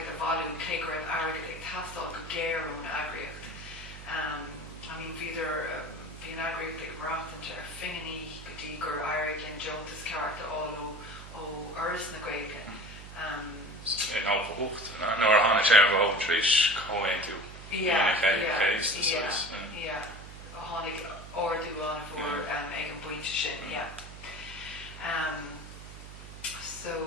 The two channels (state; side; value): noise; right; hum, 14 dB below the sound